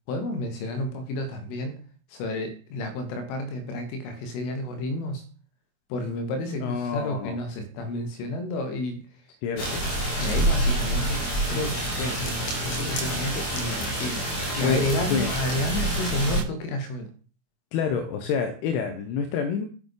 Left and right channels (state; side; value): late; right; 24 ms